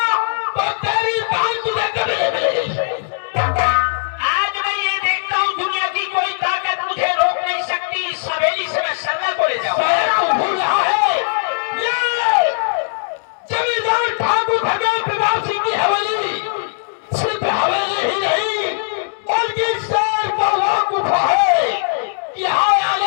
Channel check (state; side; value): silent; right; digital silence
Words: तो तेरी जान तुझे कभी नहीं मिलेगी। आज मैं ये देखता हूँ दुनिया की कोई ताकत मुझे रोक नहीं सकती। इस हवेली से मैं सरला को ले जाऊँ। तू भूल रहा है ये जमींदार ठाकुर भगवान प्रताप सिंह की हवेली सिर्फ हवेली ही नहीं